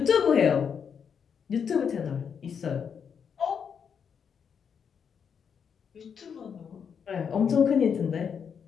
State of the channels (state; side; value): quieter; right; 7.0 dB